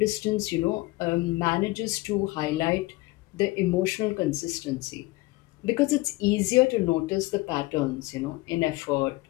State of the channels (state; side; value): quieter; right; 21.1 dB